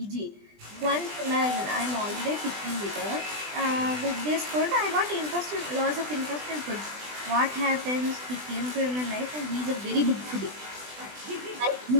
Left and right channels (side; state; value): left; late; 20 ms